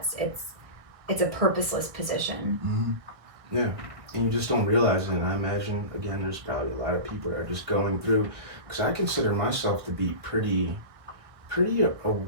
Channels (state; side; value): late; left; 1.6 ms